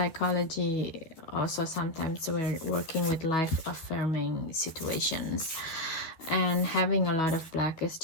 also sometimes we're working with life affirming situations, and having a lot of black is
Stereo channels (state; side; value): late; right; 12 ms